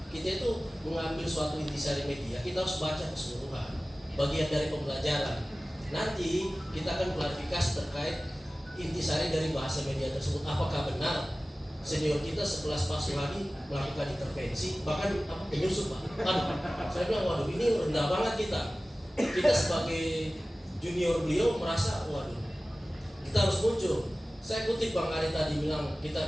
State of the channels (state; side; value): normal; both; correlation 0.97